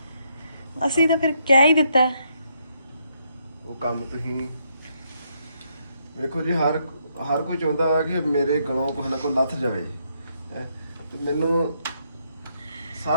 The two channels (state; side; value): inverted; both; correlation -0.75